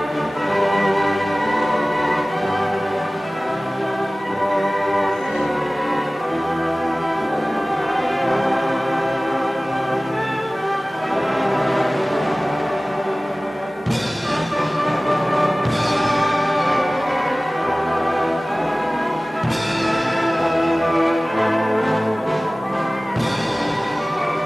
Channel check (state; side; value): normal; both; correlation 0.98